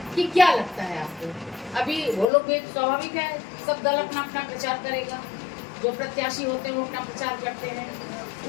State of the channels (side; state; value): right; drops out; at 2.3 s